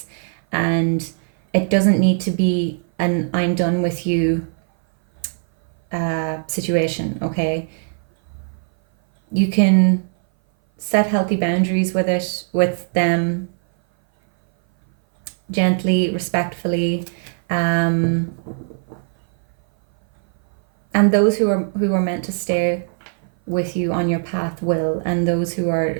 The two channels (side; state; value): left; silent; 59 dB below the other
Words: and it doesn't need to be an I'm done with you situation, okay? You can set healthy boundaries with them, gently, respectfully, and those who are meant to stay with you on your path will, and those who